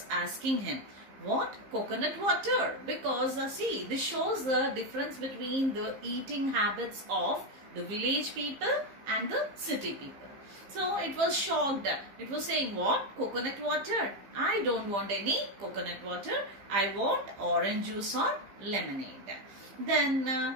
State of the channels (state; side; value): late; left; 15 ms